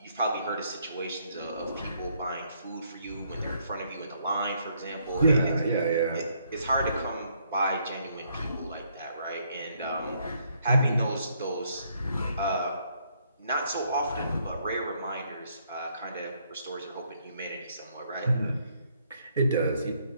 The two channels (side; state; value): both; inverted; correlation -0.70